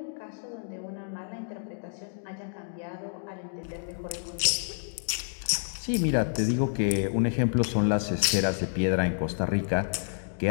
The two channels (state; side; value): silent; right; digital silence